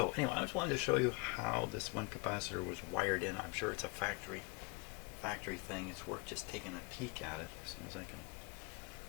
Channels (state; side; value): quieter; right; 29.6 dB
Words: anyway, I just wanted to show you how this one capacitor was wired in. I'm sure it's a factory thing. It's worth just taking a peek at it as soon as I can